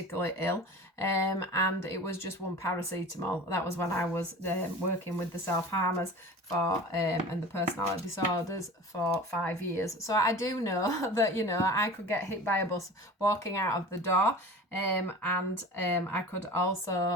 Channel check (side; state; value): both; normal; correlation 0.38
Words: ill, and it was just 1 paracetamol. That was when I was working with the self-harmers and the personality disorders for 5 years. So I do know that, you know, I could get hit by a bus walking out of the door, and I could